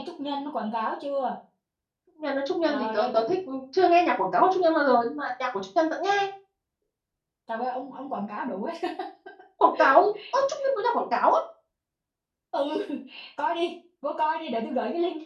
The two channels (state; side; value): identical; both; correlation 1.00